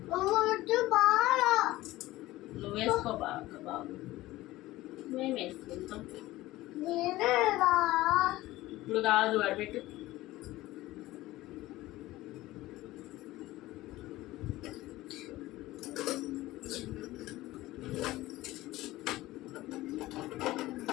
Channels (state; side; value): quieter; right; 17.4 dB